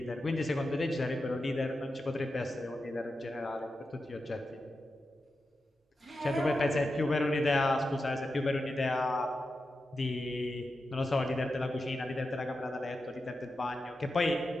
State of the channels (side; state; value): both; normal; correlation 0.90